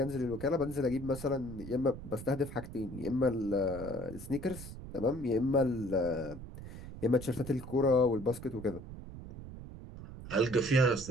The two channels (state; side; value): noise; right; rumble, 12 dB below the sound